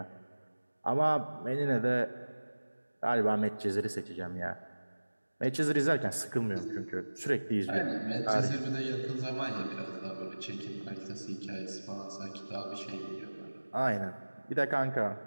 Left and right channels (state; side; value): inverted; both; correlation -1.00